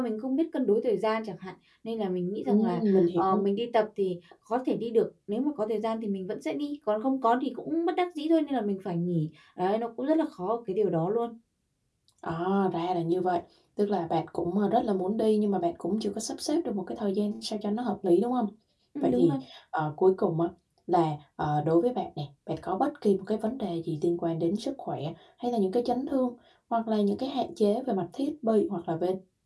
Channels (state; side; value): identical; both; correlation 1.00